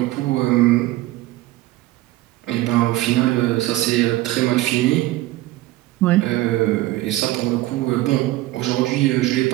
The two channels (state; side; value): quieter; left; 17.3 dB